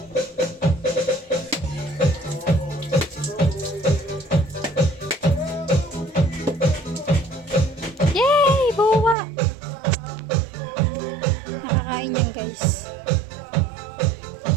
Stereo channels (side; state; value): left; drops out; at 9.2 s